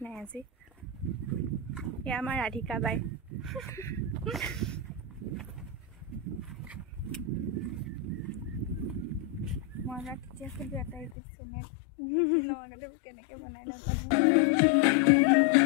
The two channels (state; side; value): drops out; right; at 11.2 s